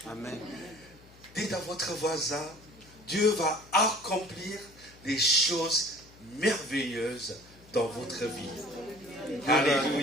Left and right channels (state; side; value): noise; left; hum, 24 dB below the sound